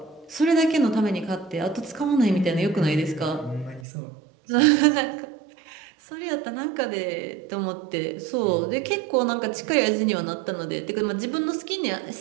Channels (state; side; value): drops out; left; at 3.9 s